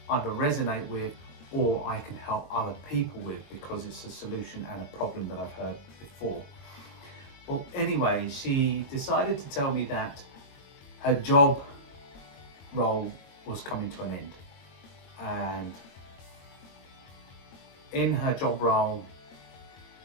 either resonate with or I can help other people with because it's a solution and a problem that I've heard before. Well, anyway, she decided to tell me that her job role was coming to an end, and in her job role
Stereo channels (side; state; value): right; late; 22 ms